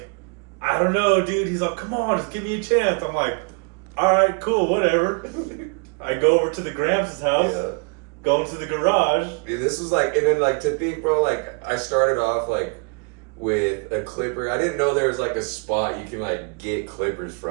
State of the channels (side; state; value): left; quieter; 35.4 dB